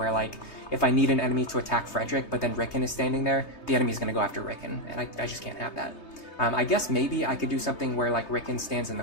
like, if I need an enemy to attack Frederick, but then Ricken is standing there, the enemy's going to go after Ricken, and I just can't have that. I guess maybe I could do something where, like, Ricken stands in the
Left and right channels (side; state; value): right; late; 3.3 ms